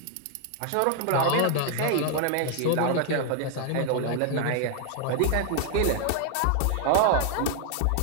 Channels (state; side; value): different; both; correlation 0.00